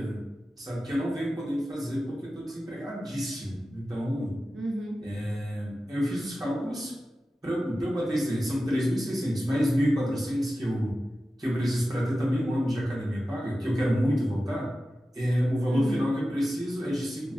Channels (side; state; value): both; normal; correlation 0.94